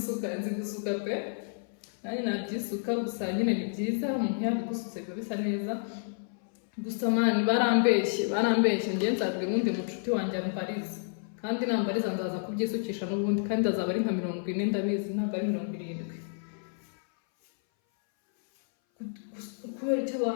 gusuka pe nanjye nabyisuka gusa nyine ni byiza umuntu yabigusutse biba bisa neza gusa man barambeshye njye nzabwira undi mucuti wanjye ambariza kandi nambariza ndaza kubyisukisha n'ubundi kandi azaba ari nka 40 ndabizi ntabwo ari 70. Kubera icyo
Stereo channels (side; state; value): right; silent; 58 dB below the other